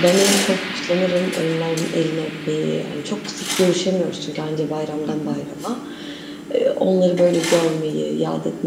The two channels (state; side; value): identical; both; correlation 1.00